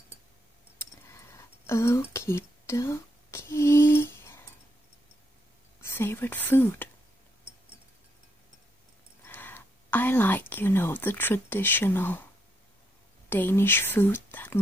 Okie dokie. Favorite food? I like, the traditional Danish food that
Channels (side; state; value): both; normal; correlation 0.77